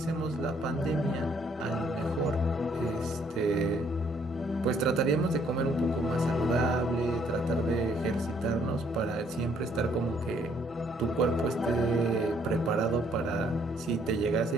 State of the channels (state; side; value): normal; both; correlation 0.66